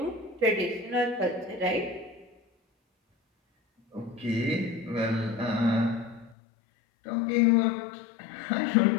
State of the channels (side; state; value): right; drops out; at 6.4 s